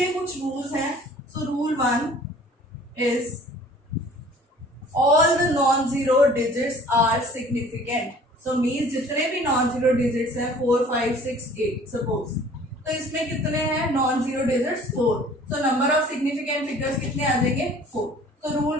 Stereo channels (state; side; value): normal; both; correlation 0.51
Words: कुछ रूल्स हैं. So rule 1 is all the non zero digits are significant. So means जितने भी नॉन जीरो डिजिट्स हैं 4, 5, 6, 8 सपोज, तो इसमें कितने हैं non zero digits? 4. So number of significant figures कितने आ जाएंगे? 4. So